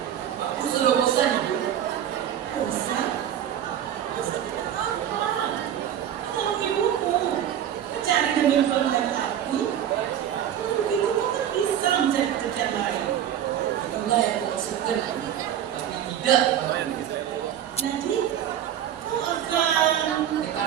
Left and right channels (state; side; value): quieter; left; 10.3 dB